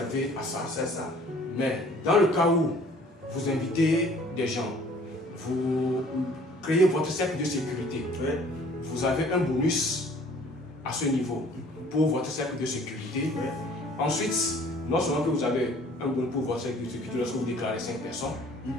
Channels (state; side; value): normal; both; correlation 0.54